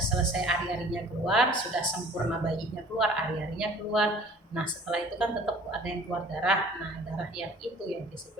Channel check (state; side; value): normal; both; correlation 0.50